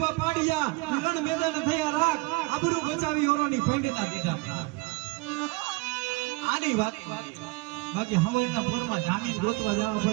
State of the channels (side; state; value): left; quieter; 24.2 dB